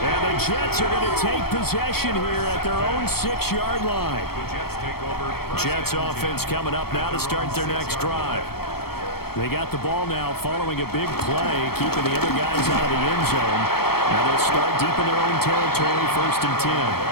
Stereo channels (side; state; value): right; late; 0.95 ms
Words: And the Jets are going to take possession here at their own 6-yard line. Jets offense coming up now to start their next drive. They got the ball now following a big play, keeping the other guys out of the end zone. Now they'll start deep in their own territory, 1st and 10.